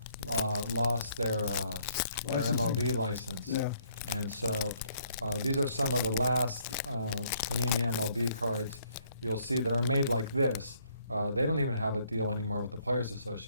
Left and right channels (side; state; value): both; inverted; correlation -0.66